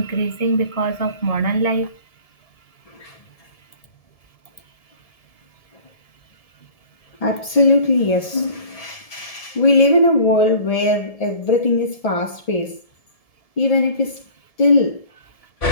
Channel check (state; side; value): late; right; 1.7 ms